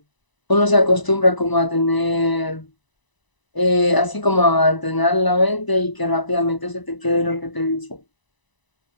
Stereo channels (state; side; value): late; right; 1.0 ms